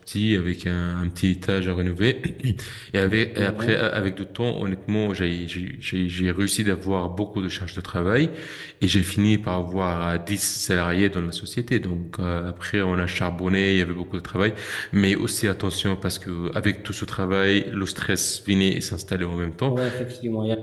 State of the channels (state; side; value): identical; both; correlation 1.00